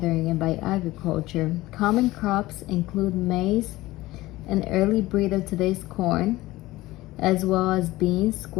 and by agriculture. Common crops include maize, an early breed of today's corn, as well as beans,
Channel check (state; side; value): quieter; right; 18.3 dB